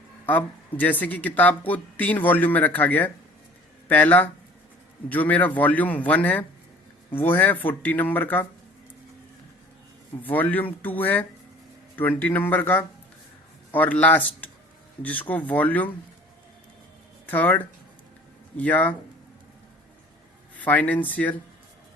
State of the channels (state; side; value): normal; both; correlation 0.48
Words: अब जैसे कि किताब को 3 वॉल्यूम में रखा गया है। पहला जो मेरा वॉल्यूम 1 है वो है 40 नंबर का, वॉल्यूम 2 है 20 नंबर का, और लास्ट जिसको वॉल्यूम 3 या फाइनेंशियल